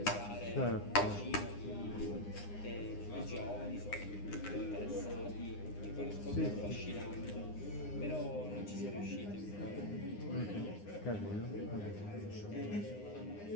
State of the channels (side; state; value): right; late; 9.8 ms